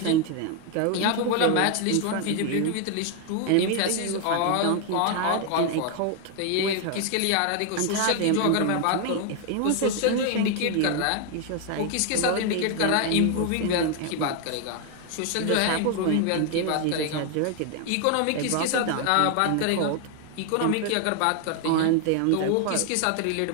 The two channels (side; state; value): both; different; correlation 0.01